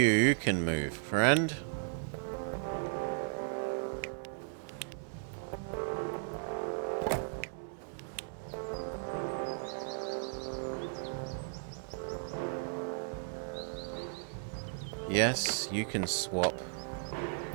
can move, friend. Yes, you can swap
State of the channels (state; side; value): silent; left; digital silence